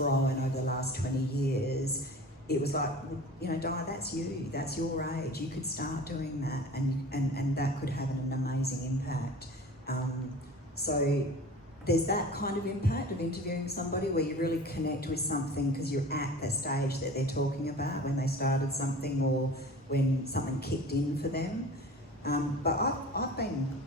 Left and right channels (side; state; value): both; normal; correlation 0.39